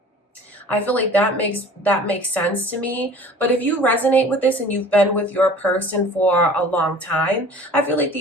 I feel like that makes sense to me. But if you resonate with this and you've been with your person for a long time, I feel like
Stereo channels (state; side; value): normal; both; correlation 0.45